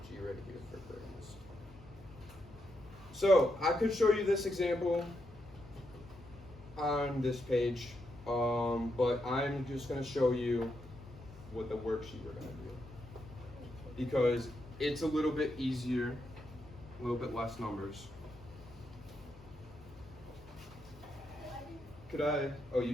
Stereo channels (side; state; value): left; noise; hum, 21 dB below the sound